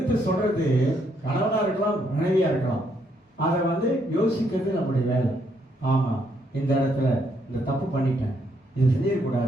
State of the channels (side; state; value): both; normal; correlation 0.73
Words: சொல்றது கணவனா இருக்கலாம், மனைவியா இருக்கலாம். அதை யோசிக்கிறது நம்முடைய வேலை. ஆமா, இந்த இடத்துல இந்த தப்பு பண்ணிட்டேன், இது